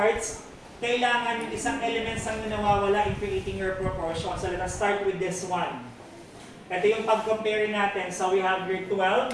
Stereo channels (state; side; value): identical; both; correlation 1.00